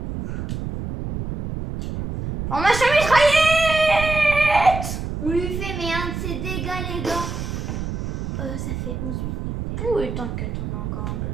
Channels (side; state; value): right; noise; rumble, 5 dB below the sound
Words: Formation mitraillette. On lui fait mais un de ses dégâts, les gars. Ça fait 11 minutes. Oui, t'inquiète, on a encore un peu